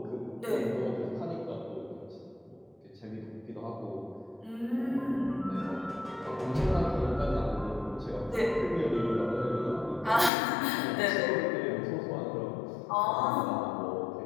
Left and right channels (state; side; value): drops out; right; at 10.3 s